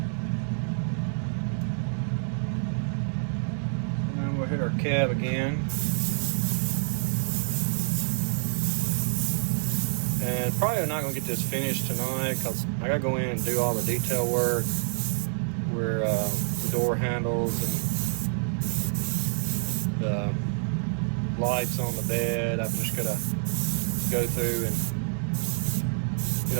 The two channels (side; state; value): left; silent; 60 dB below the other